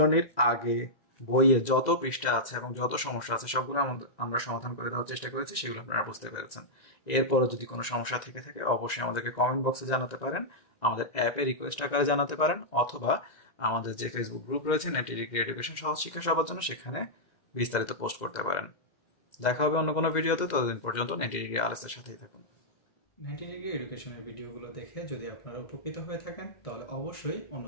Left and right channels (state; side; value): late; right; 2.0 ms